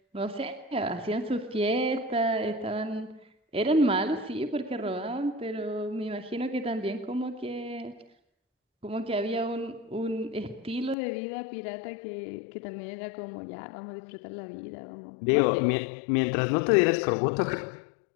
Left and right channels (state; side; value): drops out; right; at 11.0 s